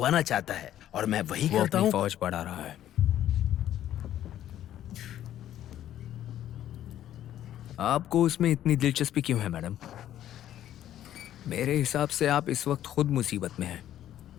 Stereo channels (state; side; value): quieter; right; 11.8 dB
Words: चाहता है, और मैं वही वो करता अपनी हूँ। फौज बढ़ा रहा है। आपको उसमें इतनी दिलचस्पी क्यों है मैडम? मेरे हिसाब से आप इस वक्त खुद मुसीबत में हैं।